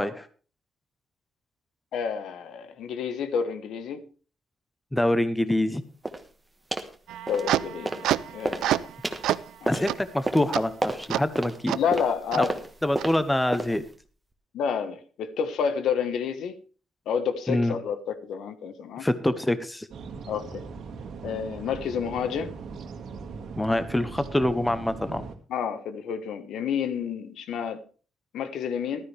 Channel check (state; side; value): normal; both; correlation 0.78